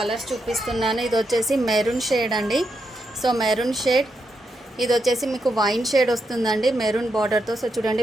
చూపిస్తున్నాను. ఇది వచ్చేసి మెరూన్ షేడ్ అండి. సో మెరూన్ షేడ్, ఇది వచ్చేసి మీకు వైన్ షేడ్ వస్తుందండి మెరూన్ బార్డర్తో. సో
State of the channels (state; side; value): normal; both; correlation 0.83